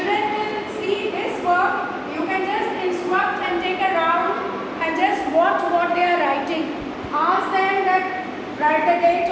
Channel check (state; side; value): identical; both; correlation 1.00